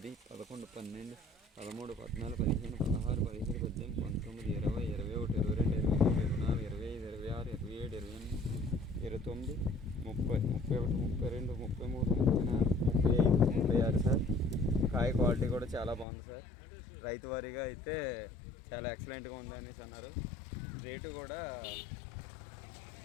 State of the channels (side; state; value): right; drops out; at 16.1 s